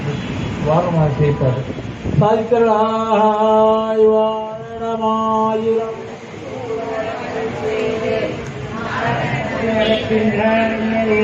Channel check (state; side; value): identical; both; correlation 1.00